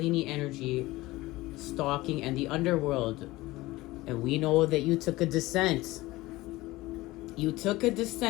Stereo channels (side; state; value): right; quieter; 19.1 dB